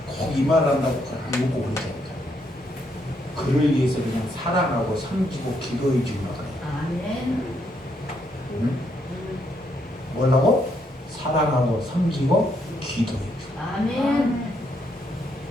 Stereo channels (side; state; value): both; normal; correlation 0.75